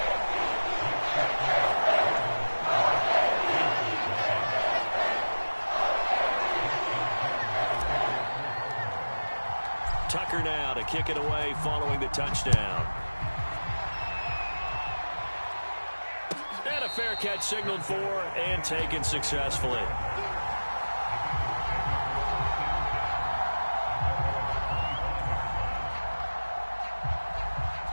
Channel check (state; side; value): inverted; both; correlation -1.00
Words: Tucker now to kick it away following the touchdown. And a fair catch signaled for and taken successfully.